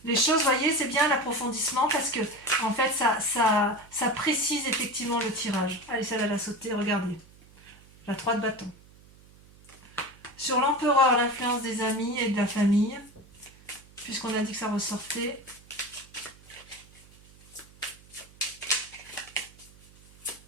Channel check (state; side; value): noise; right; hum, 25 dB below the sound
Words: Les choses, vous voyez, c'est bien l'approfondissement parce que, en fait, ça précise effectivement le tirage. Allez, celle-là, elle a sauté, regardez. La 3 de bâton. Sur l'empereur, l'influence des amis et de la famille. Puisqu'on a dit que ça ressortait.